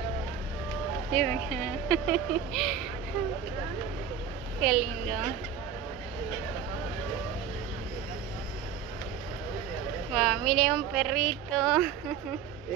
Miren. Qué lindo. Wow, mire un perrito.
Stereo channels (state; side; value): quieter; left; 7.9 dB